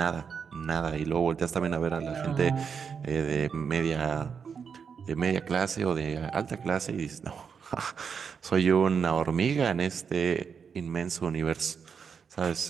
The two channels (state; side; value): quieter; left; 6.4 dB